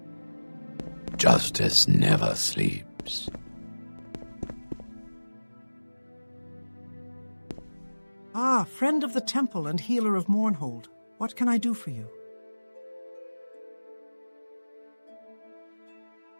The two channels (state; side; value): inverted; both; correlation -1.00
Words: Justice never sleeps. Ah, friend of the temple and healer of Mournhold. What can I do for you?